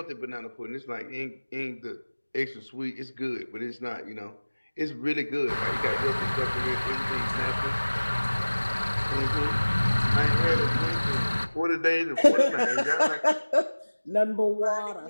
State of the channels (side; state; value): both; inverted; correlation -1.00